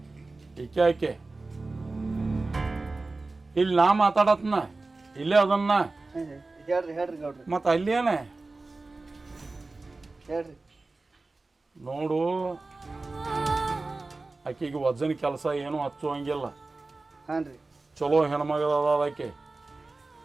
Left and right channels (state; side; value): quieter; left; 3.4 dB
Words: ಈಕೆ ಇಲ್ಲಿ ನಾ ಮಾತಾಡತ್ನ ಇಲ್ಲೇ ಅದನ್ನ ಮತ್ತು ಅಲ್ಲೇನೆ ನೋಡು. ಆಕೆಗೆ ವಜನ್ ಕೆಲಸ ಏನೂ ಹಚ್ಚುವಂಗಿಲ್ಲ. ಚಲೋ ಹೆಣ್ಮಗದ ಆಕೆ.